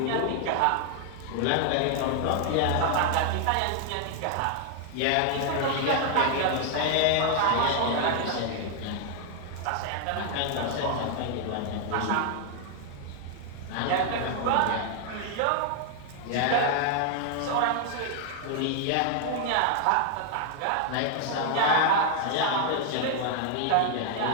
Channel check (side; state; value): both; different; correlation 0.00